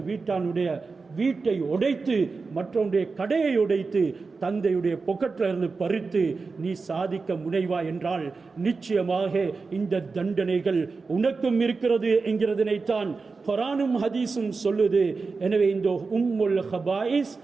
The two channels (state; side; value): quieter; left; 4.3 dB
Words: வீட்டானுடைய வீட்டை உடைத்து மற்றவனுடைய கடையை உடைத்து தந்தையுடைய பொக்கெட்டில் இருந்து பறித்து நீ சாதிக்க முனைவா என்றால் நிச்சயமாக இந்த தண்டனைகள் உனக்கும் இருக்கிறது என்கிறதனைத்தான் குர்ஆனும் ஹதீஸும் சொல்லுது. எனவே இந்த உம்முல் ஹபாயிஸ்